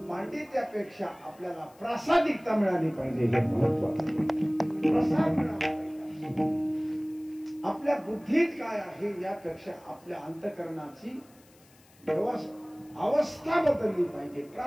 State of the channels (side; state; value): left; noise; hiss, 29 dB below the sound